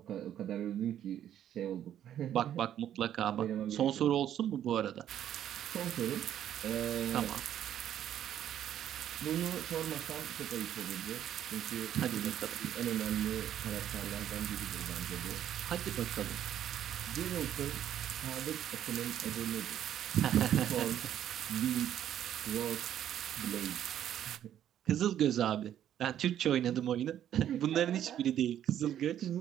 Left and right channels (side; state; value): left; quieter; 10.7 dB